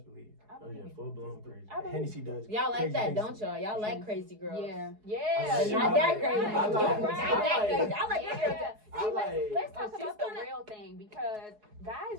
believe. I Oh, yeah, believe. full blown crazy. I believe. Hennessy does. Y'all like crazy that, things don't to y'all? me. Y'all like She- crazy girls. Yeah. I Yeah. like- Not that crazy. I like- Not that crazy. I like Yeah. that girl. I See, like- let's talk she's about the gonna- real thing because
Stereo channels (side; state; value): left; late; 4.7 ms